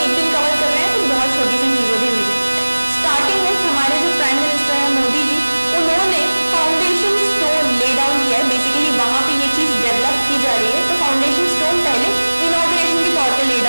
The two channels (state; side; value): inverted; both; correlation -1.00